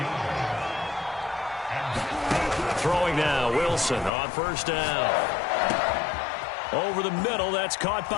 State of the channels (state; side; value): drops out; right; at 4.1 s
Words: Throwing now, Wilson on 1st down. Over the middle, that's caught